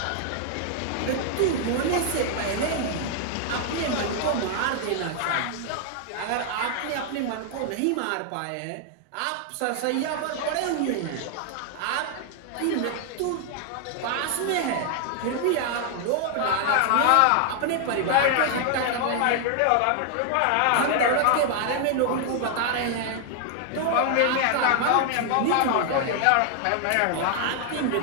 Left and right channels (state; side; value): different; both; correlation 0.00